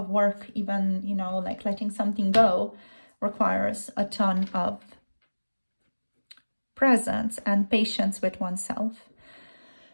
work, even, you know, like letting something go requires a ton of presence and patience with oneself.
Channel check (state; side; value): inverted; both; correlation -1.00